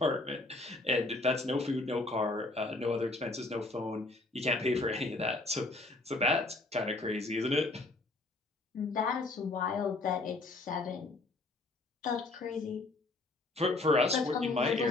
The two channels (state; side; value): quieter; right; 3.0 dB